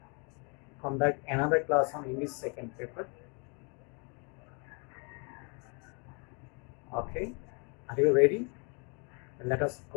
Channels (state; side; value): quieter; right; 35.5 dB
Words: conduct another class on English second paper. Okay, are you ready? Let us